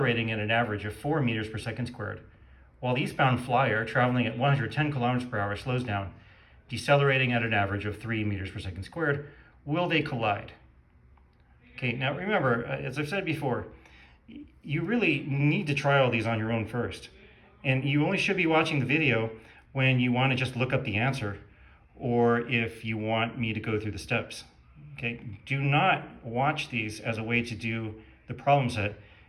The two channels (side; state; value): both; identical; correlation 1.00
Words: at an average of 4 meters per second squared, while the eastbound flyer traveling at 110 kilometers per hour slows down, decelerating at an average of 3 meters per second squared. Will they collide? Okay, now remember, as I've said before, you really need to try all these on your own first. And you only should be watching the video when you want to just look up the answer or if you want me to go through the steps. Okay, do not watch these as a way to do the problem set.